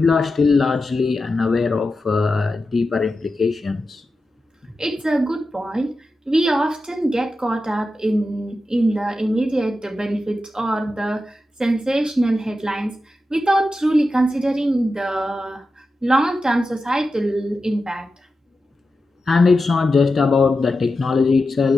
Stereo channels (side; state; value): both; normal; correlation 0.91